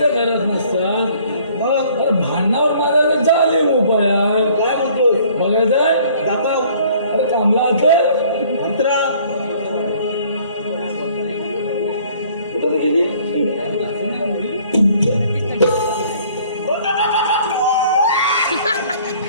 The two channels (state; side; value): inverted; both; correlation -0.57